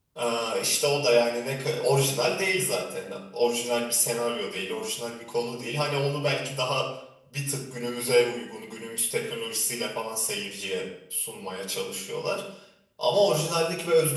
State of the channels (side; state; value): both; identical; correlation 1.00